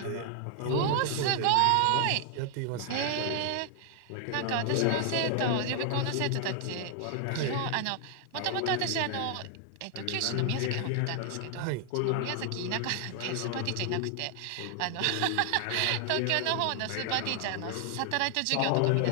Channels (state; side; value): different; both; correlation 0.00